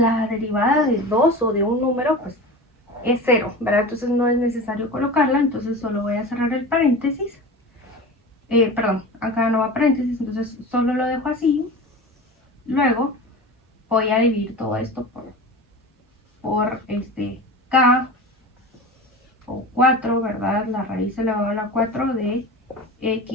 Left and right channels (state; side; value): normal; both; correlation 0.31